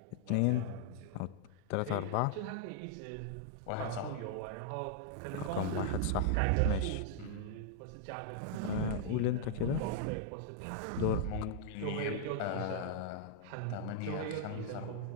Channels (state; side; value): different; both; correlation -0.01